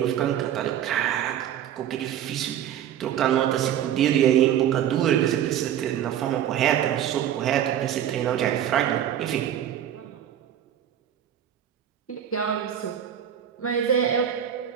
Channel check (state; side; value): quieter; left; 10.4 dB